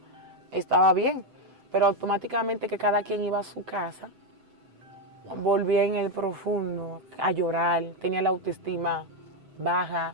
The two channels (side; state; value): left; late; 7.9 ms